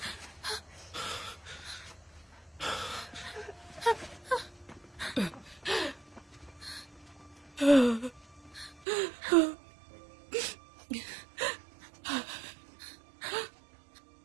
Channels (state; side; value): drops out; left; at 8.8 s